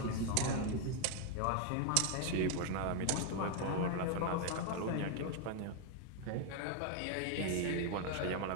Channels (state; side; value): different; both; correlation 0.01